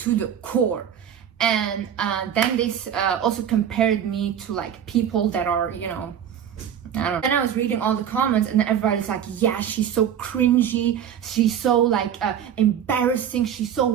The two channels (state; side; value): quieter; left; 9.1 dB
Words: the core. And then they also compared me to like people that are, you know, I don't know. Then I was reading all the comments, and everybody's like, yeah, she's so cringy, she's so like embarrassing, she's so